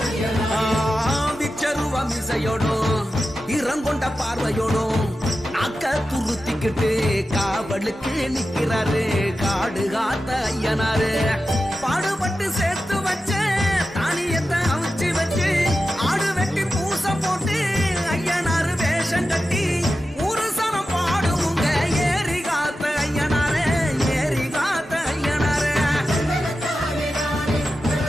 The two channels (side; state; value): both; normal; correlation 0.92